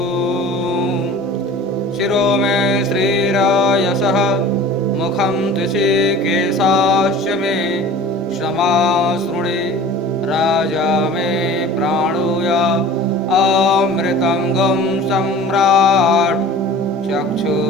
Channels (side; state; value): both; normal; correlation 0.41